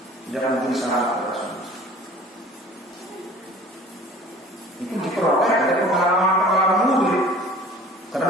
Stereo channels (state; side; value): normal; both; correlation 0.46